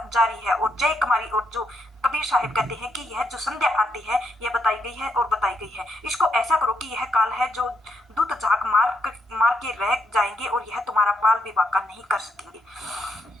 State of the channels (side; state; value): both; normal; correlation 0.78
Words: जारी है और जय कुमारी। और जो कबीर साहिब कहते हैं कि यह जो संध्या आरती है यह बताई गई है और बताई गई है, इसको ऐसा करो कि यह काल है जो दूत झाक मार के रह जाएंगे और यह तुम्हारा बाल विवाह का नहीं कर सकेंगे।